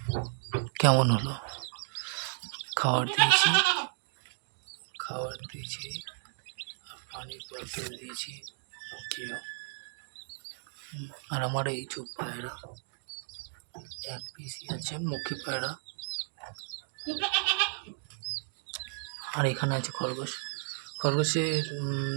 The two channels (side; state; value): left; silent; 56 dB below the other